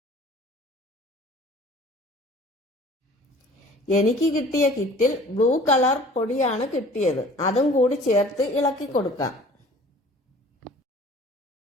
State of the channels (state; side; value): normal; both; correlation 0.48